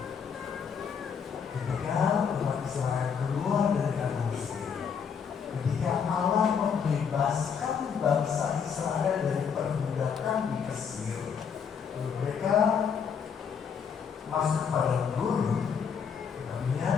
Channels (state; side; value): quieter; right; 6.8 dB